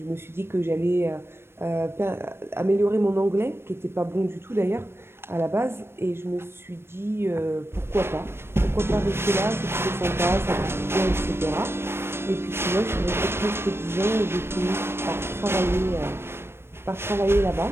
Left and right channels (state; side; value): late; left; 0.12 ms